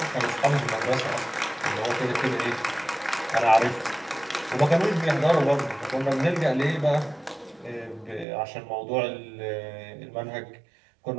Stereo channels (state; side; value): drops out; left; at 8.2 s